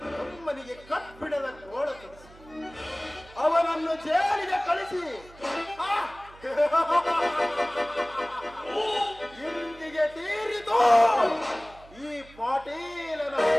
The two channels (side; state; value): right; noise; hum, 22 dB below the sound